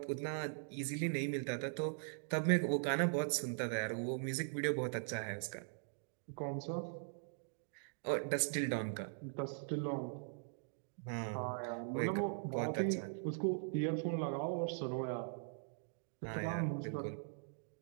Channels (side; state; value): left; silent; digital silence